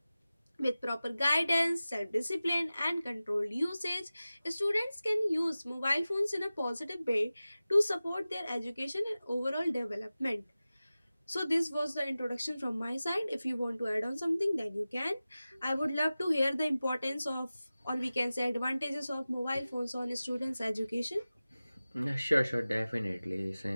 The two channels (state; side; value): inverted; both; correlation -0.96